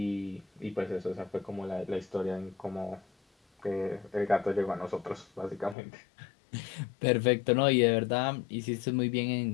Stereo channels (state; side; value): drops out; right; at 5.8 s